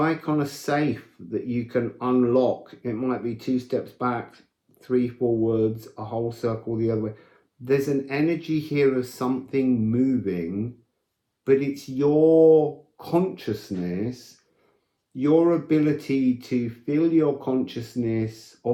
on a safe that you can unlock. It might be 2 steps back, 3 forwards, a whole circle the other way. There's an energy here of something moving, but it's your consciousness, your ability to fill your consciousness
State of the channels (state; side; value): identical; both; correlation 1.00